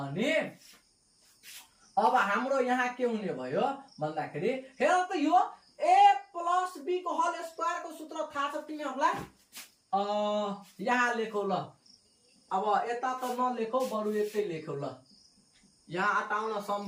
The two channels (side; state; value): both; identical; correlation 1.00